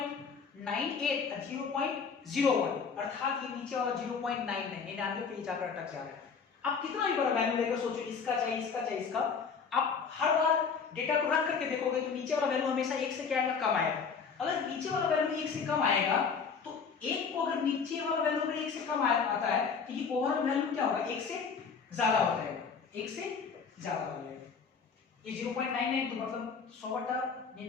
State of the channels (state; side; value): quieter; right; 5.8 dB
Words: और 0.01 अर्थात ये नीचे वाला 0.99 पे जाकर अटक जा रहा है। आप कितना भी बड़ा वैल्यू लेकर सोचो, इसका चाहिए इसका चाहिए इसका, आप हर बार डेटा को रख करके देखोगे तो नीचे वाला वैल्यू हमेशा 1 से क्या आएगा कम आएगा। अगर नीचे वाला वैल्यू 1 से कम आएगा तो 1 को अगर नीचे वाला वैल्यू अगर 1 से कम आता है तो ये ओवरऑल वैल्यू क्या होगा 1 से ज्यादा हो जाएगा, 1 से ज्यादा हो जाएगा। ये 0.99 तो मतलब